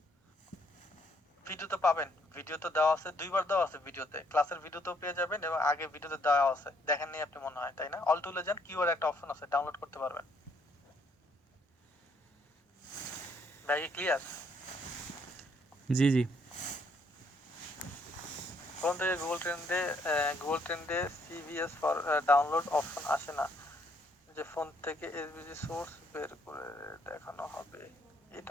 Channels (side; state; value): both; normal; correlation 0.69